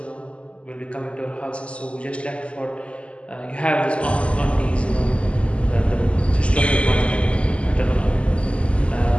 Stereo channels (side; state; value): right; late; 0.057 ms